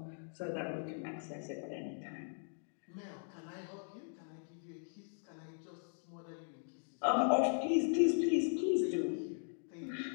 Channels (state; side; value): silent; right; digital silence